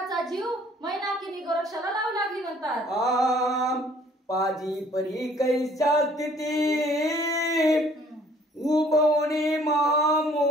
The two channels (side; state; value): both; normal; correlation 0.58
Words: जीव मैनाकीनी गोरक्षाला लावू लागली म्हणतात। पाजी परी कैसा स्थिती उभवणे